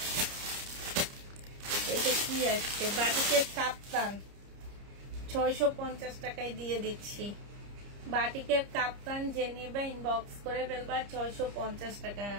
এটা কি আসছে বাটিকে কাপ্তান 650 টাকায় দিয়ে দিচ্ছি। বাটিকের কাপ্তান যে নেবে ইনবক্স করে ফেলবা, 650 টাকা।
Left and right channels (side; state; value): left; late; 30 ms